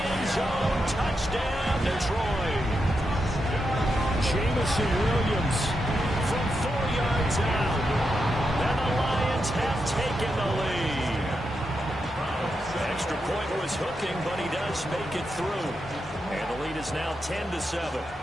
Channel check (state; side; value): normal; both; correlation 0.86